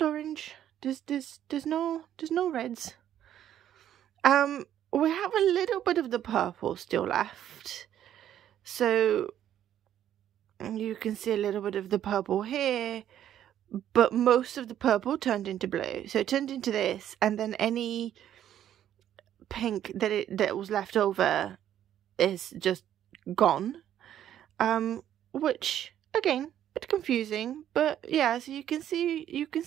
orange. There's no reds. We have a little bit of the purple still left, so you can see a little bit of the purple here, but most of the purple turned into blue. So it turned into this, and then any pink that was left over is just gone. Which again, bit confusing, but yeah, so you can see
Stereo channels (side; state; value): left; quieter; 10.9 dB